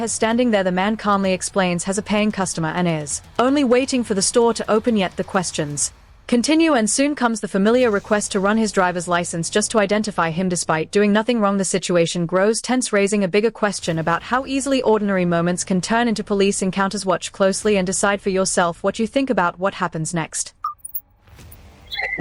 standing there. The man calmly explains has a paying customer and is only waiting for the store to open, yet the questions continue, and soon comes the familiar request to run his driver's license just to identify him despite doing nothing wrong. The situation grows tense, raising a bigger question about how easily ordinary moments can turn into police encounters. Watch closely and decide for yourself what you think about what happens next.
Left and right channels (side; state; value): both; identical; correlation 1.00